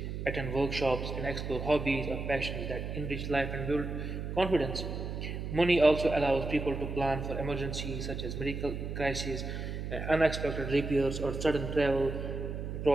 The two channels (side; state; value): right; noise; hum, 5 dB below the sound